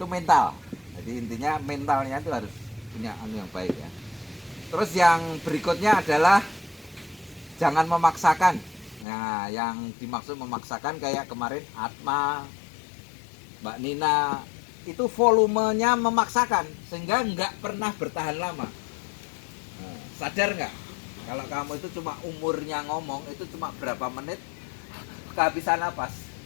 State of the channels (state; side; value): drops out; right; at 9.1 s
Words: mental. Jadi intinya mentalnya itu harus punya yang baik ya. Terus yang berikutnya adalah jangan memaksakan. Nah, yang dimaksud memaksakan kayak kemarin Atma, Mbak Nina, itu volumenya memaksakan sehingga nggak pernah bertahan lama. Nah, sadar nggak? Kalau kamu itu cuma umurnya ngomong itu cuma berapa menit kehabisan napas.